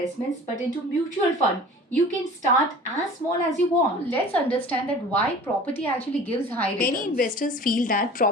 but into mutual fund, you can start as small as you want. Let's understand that why property actually gives high returns. Many investors feel that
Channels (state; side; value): normal; both; correlation 0.42